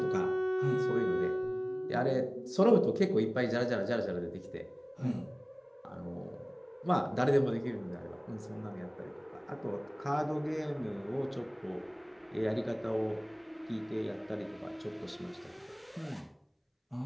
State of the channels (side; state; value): both; identical; correlation 1.00